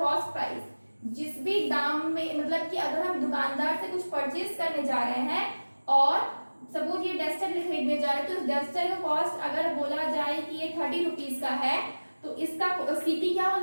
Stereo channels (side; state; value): both; inverted; correlation -1.00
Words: प्राइस। जिस भी दाम में, मतलब कि अगर हम दुकानदार से कुछ परचेज करने जा रहे हैं और सपोज ये डस्टर खरीदने जा रहे हैं, तो इस डस्टर का कॉस्ट अगर बोला जाए कि ये 30 रुपीज का है, तो इसका सीपी क्या हो